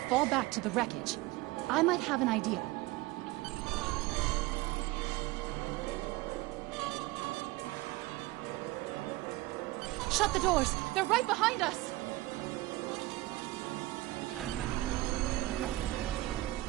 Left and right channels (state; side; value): quieter; left; 19.2 dB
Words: fall back to the wreckage. I might have an idea. Shut the doors! They're right behind us!